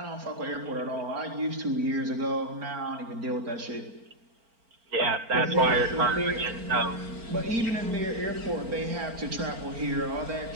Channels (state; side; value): late; left; 4.4 ms